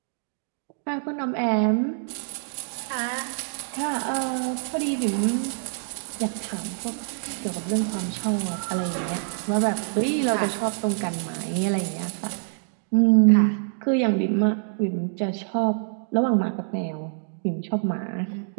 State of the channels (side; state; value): left; silent; digital silence